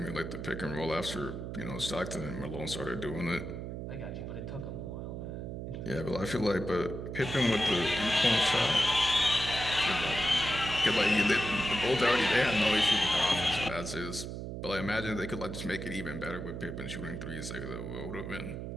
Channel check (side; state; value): right; noise; hum, 6 dB below the sound